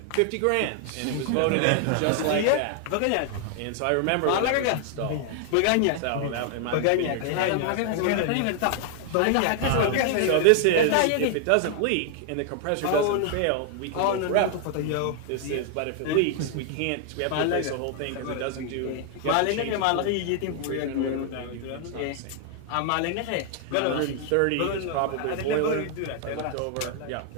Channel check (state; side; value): different; both; correlation 0.00